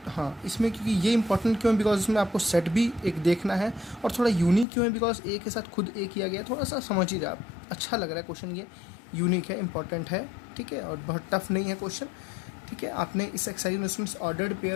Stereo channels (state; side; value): drops out; right; at 4.7 s